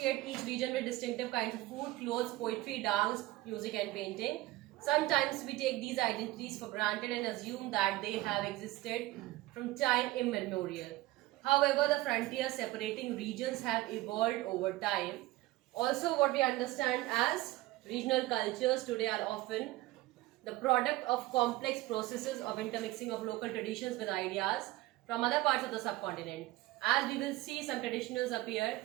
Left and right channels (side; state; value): left; quieter; 18.1 dB